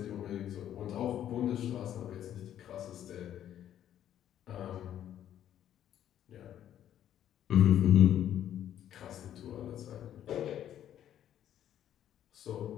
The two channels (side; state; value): right; quieter; 10.9 dB